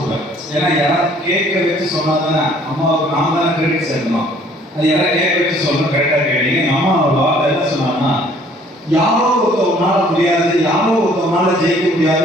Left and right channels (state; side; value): normal; both; correlation 0.58